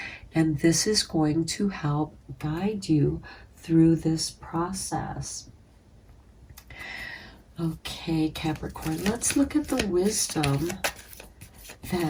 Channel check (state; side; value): identical; both; correlation 1.00